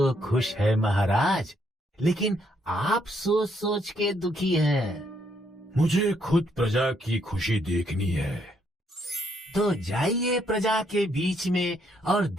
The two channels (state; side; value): normal; both; correlation 0.73